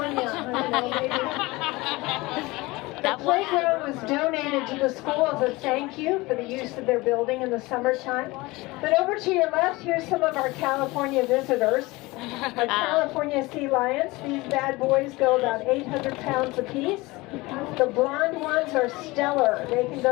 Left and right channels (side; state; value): right; quieter; 22.0 dB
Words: I don't know, maybe. The playground was donated to the school as a thank you for the use of their building in the summertime. But over to your left, here's some of our California visitors. Our California sea lions. These bad boys go about 800 pounds apiece. The blonde ones are stellar. They can